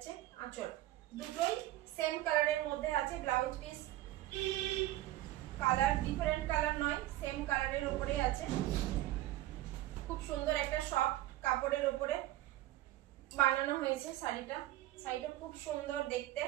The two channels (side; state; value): left; quieter; 15.7 dB